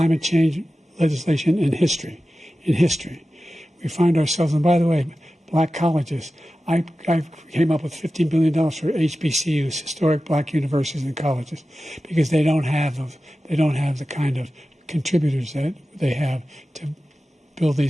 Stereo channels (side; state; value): both; normal; correlation 0.94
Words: change legislation in history. We find ourselves, and by the way, black colleges. I came up with $15 billion for HBCUs, historic black universities and colleges, because they don't have the kind of contributors that they have to build